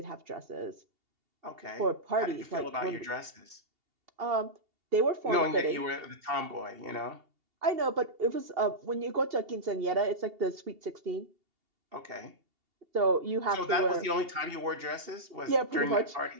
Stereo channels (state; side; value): late; left; 2.8 ms